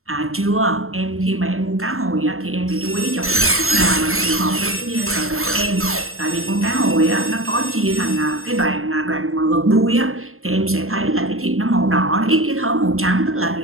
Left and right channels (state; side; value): late; left; 0.62 ms